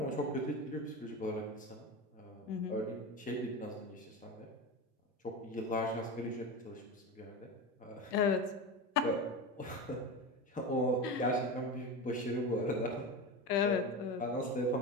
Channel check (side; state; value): both; normal; correlation 0.24